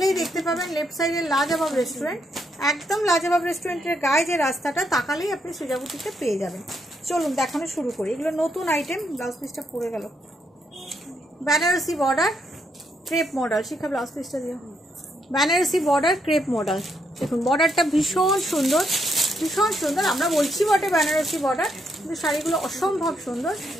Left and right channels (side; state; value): both; normal; correlation 0.77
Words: দেখতে পাবেন লেফট সাইডে লাজবাব রেস্টুরেন্ট। একদম লাজবাব রেস্টুরেন্টের গায়ে যে রাস্তাটা, তাকালেই আপনি সৃজা বুটিকে পেয়ে যাবেন। চলুন দেখানো শুরু করি। এগুলো নতুন আইটেম। ব্লাউজ পিসটা পড়ে গেল। Banarasi border crepe model. Shikha blouse পিসটা দিও। Banarasi border crepe model. দেখুন বর্ডারটা ভীষণ সুন্দর, ভীষণ সুন্দর। আমরা বলছি বটে বেনারসি বর্ডার, কিন্তু শাড়িগুলো অসম্ভব সুন্দর।